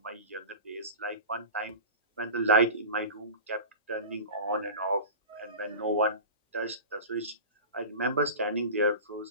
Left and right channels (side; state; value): both; inverted; correlation -0.33